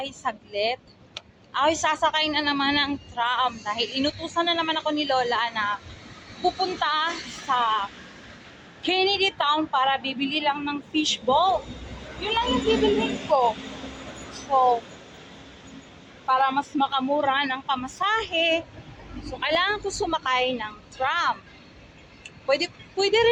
saglit. Ako'y sasakay na naman ng tram dahil inutusan na naman ako ni Lola na pupunta sa Kennedy Town para bibili lang ng fishball. Yun lang yung bibilhin ko. So, para mas makamura ng pamasahe, so kailangan ko sumakay ng tram. Pwede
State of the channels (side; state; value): both; identical; correlation 1.00